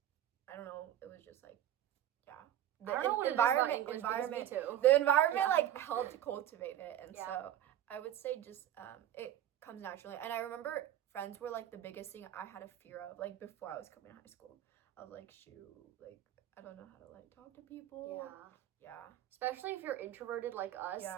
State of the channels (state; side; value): quieter; left; 11.6 dB